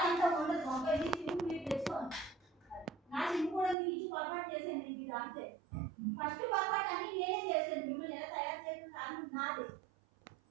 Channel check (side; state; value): left; drops out; at 3.8 s